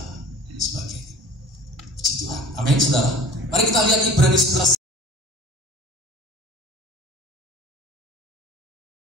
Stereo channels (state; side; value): normal; both; correlation 0.44